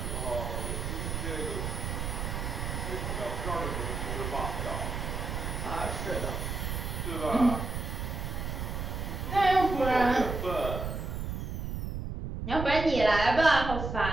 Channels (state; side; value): noise; right; rumble, 3 dB below the sound